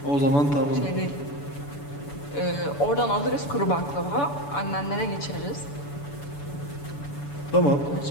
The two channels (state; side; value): late; right; 7.0 ms